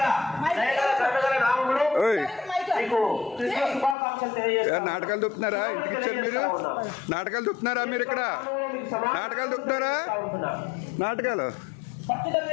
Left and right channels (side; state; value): right; drops out; at 4.0 s